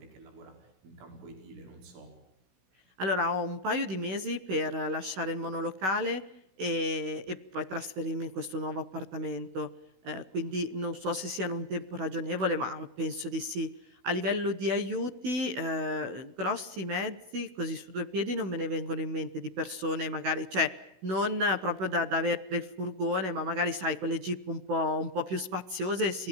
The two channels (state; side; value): late; left; 16 ms